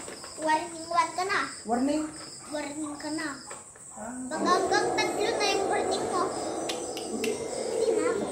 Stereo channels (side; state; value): both; identical; correlation 1.00